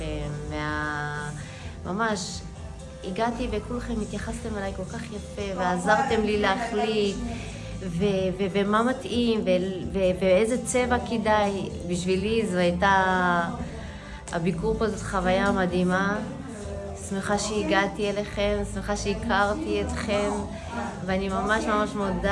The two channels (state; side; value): identical; both; correlation 1.00